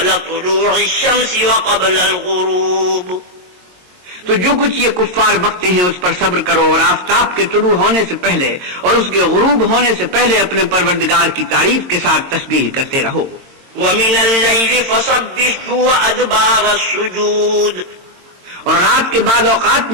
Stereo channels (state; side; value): late; left; 22 ms